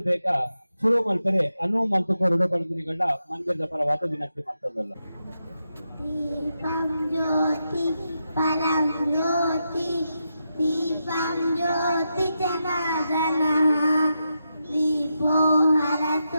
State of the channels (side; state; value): both; inverted; correlation -0.86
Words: ಬೇಗ ಶುರು ಮಾಡ್ತಾರೆ ಅನುವು ಮಲ್ತುಕೋರಡು ಬಂದಿನಿಗಳ ಮಂದಿರದ ಪರವಾದ ವಿನಂತಿ ಮಾಡ್ತದಲ್ಲ ದೀಪಂ ಜ್ಯೋತಿ ಪರಂ ಜ್ಯೋತಿ ದೀಪಂ ಜ್ಯೋತಿ ಜನಾರ್ದನ ದೀಪೋ